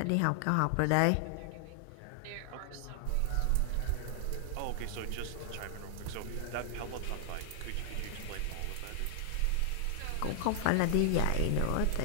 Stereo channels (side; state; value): both; different; correlation 0.00